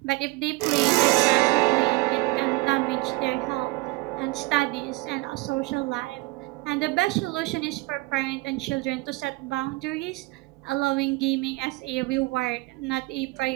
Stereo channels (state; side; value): quieter; left; 22.7 dB